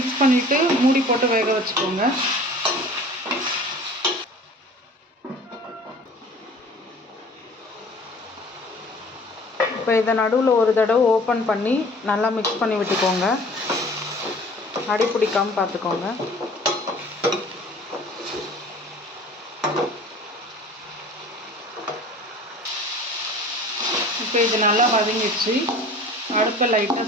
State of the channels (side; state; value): both; normal; correlation 0.46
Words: பண்ணிவிட்டு மூடி போட்டு வேக வச்சுக்கோங்க. இப்போ இதை நடுவில் ஒரு தடவை ஓப்பன் பண்ணி நல்லா மிக்ஸ் பண்ணி விட்டுக்கோங்க. அடி பிடிக்காமல் பார்த்துக்கோங்க. இப்போ இது நல்லா வதங்கிடுச்சு. அடுப்பை லைட்டாக